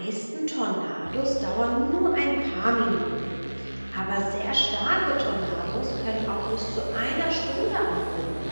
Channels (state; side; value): inverted; both; correlation -1.00